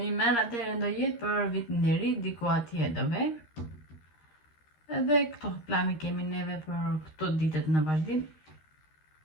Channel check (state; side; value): late; right; 13 ms